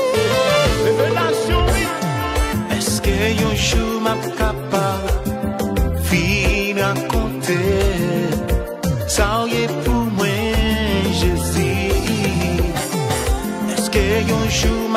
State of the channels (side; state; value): both; identical; correlation 1.00